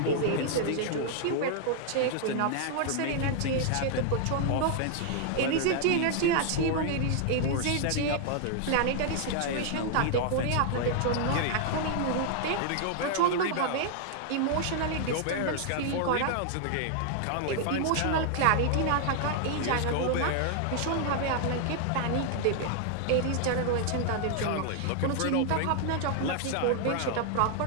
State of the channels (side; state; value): both; different; correlation 0.00